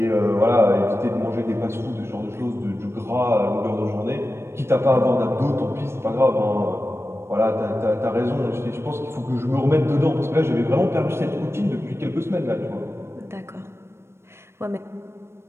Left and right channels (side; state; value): left; late; 0.12 ms